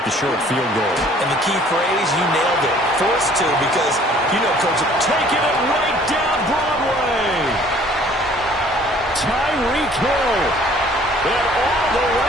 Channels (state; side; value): normal; both; correlation 0.55